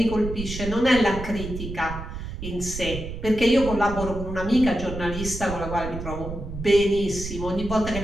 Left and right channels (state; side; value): noise; right; rumble, 8 dB below the sound